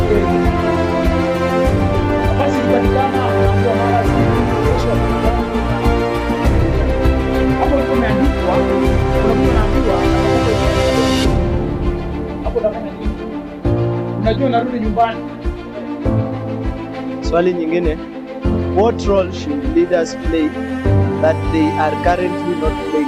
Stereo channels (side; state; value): both; identical; correlation 1.00